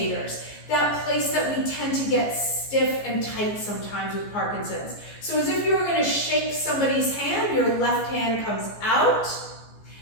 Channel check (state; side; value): late; right; 14 ms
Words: That place that we tend to get stiff and tight sometimes with Parkinson's. So as if you were gonna shake somebody's hand, your left hand comes out,